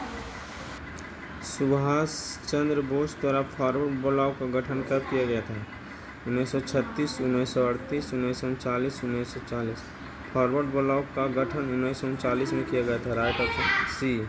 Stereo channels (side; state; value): both; identical; correlation 1.00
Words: सुभाष चंद्र बोस द्वारा फॉरवर्ड ब्लॉक का गठन कब किया गया था? 1936, 1938, 1939, 1940। फॉरवर्ड ब्लॉक का गठन 1939 में किया गया था। राइट ऑप्शन सी।